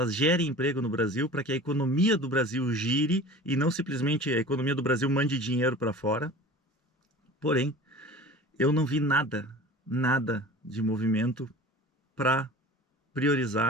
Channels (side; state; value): both; normal; correlation 0.39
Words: gerem emprego no Brasil, para que a economia do Brasil gire e não simplesmente a economia do Brasil mande dinheiro para fora. Porém, eu não vi nada de movimento para